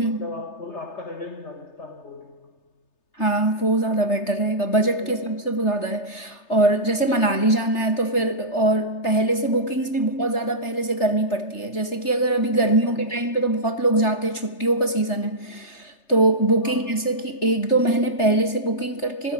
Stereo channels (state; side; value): late; right; 3.3 ms